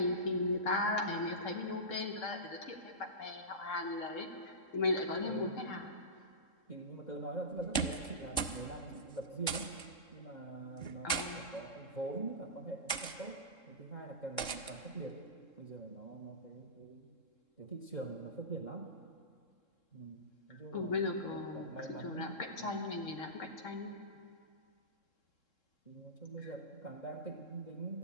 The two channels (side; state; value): right; late; 3.7 ms